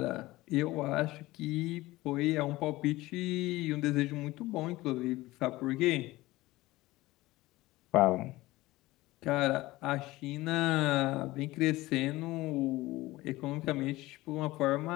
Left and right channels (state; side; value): quieter; right; 18.8 dB